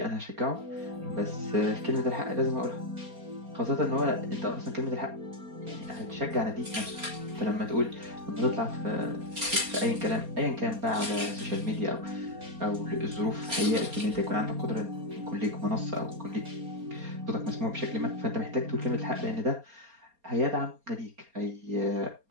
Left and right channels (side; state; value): left; late; 4.3 ms